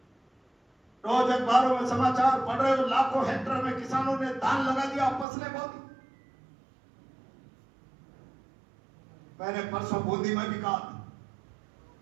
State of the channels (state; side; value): drops out; left; at 5.2 s